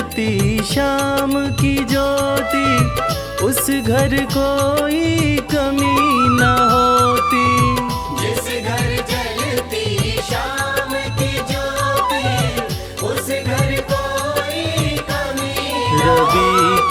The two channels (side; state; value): both; identical; correlation 1.00